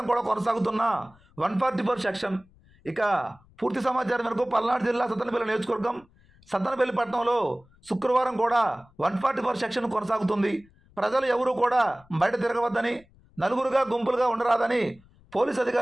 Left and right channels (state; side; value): noise; left; rumble, 29 dB below the sound